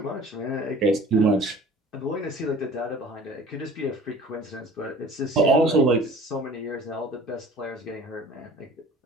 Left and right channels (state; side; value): normal; both; correlation 0.46